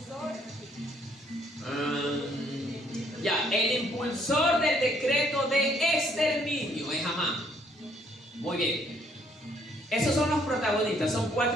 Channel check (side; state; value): both; normal; correlation 0.66